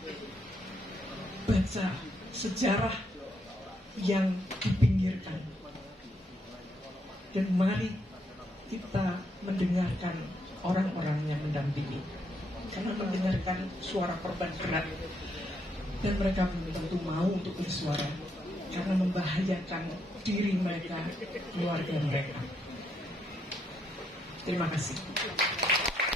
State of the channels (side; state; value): both; normal; correlation 0.76